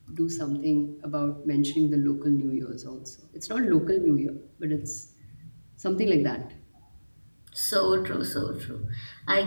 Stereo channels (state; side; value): inverted; both; correlation -1.00